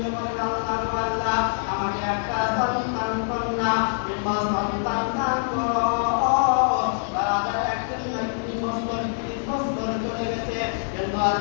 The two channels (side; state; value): right; silent; digital silence